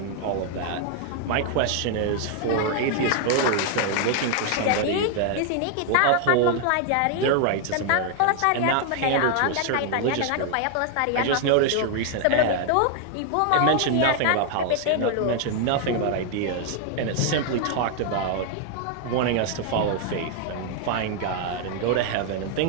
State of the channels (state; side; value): different; both; correlation 0.00